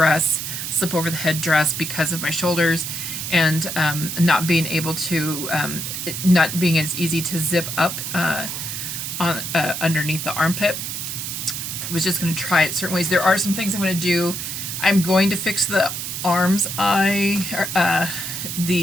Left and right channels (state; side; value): noise; right; hiss, 5 dB below the sound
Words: slip over the head dress because of my shoulders, and not being able to, not being as easy to zip up on underneath the armpit. I was just going to try it certain ways. There are some things I'm going to do. I'm going to fix the arms. In